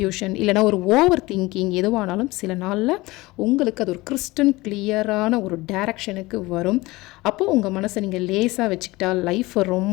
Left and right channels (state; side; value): quieter; right; 20.9 dB